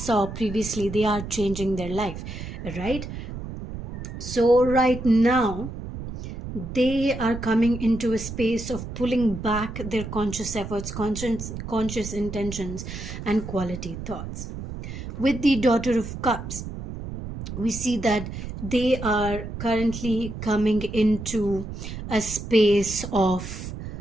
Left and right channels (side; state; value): right; noise; rumble, 8 dB below the sound